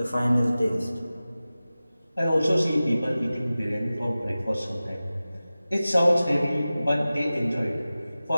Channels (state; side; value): inverted; both; correlation -0.96